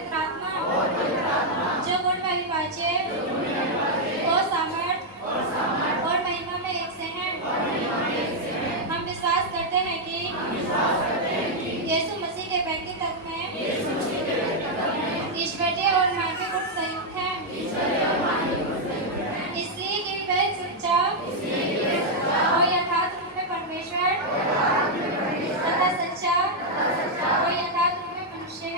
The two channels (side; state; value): both; normal; correlation -0.02